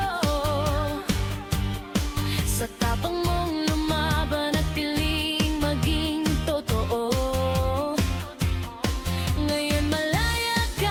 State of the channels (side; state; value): both; identical; correlation 1.00